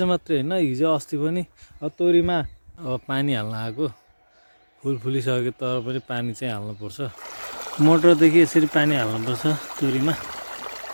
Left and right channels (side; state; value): both; inverted; correlation -1.00